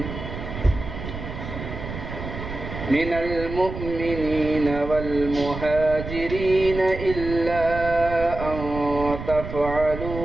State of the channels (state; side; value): noise; right; rumble, 8 dB below the sound